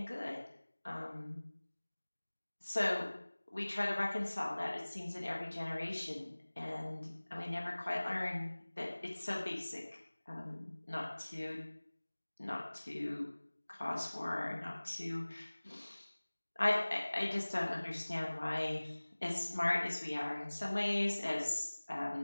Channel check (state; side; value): inverted; both; correlation -1.00